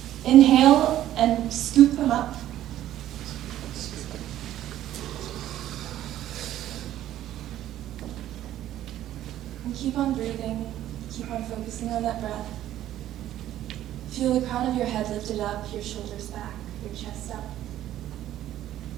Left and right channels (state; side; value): quieter; left; 12.8 dB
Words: Inhale and scoop them up. And keep on breathing. Keep on focusing on that breath. Feel the crown of your head lifted up, your shoulders back, your chest up.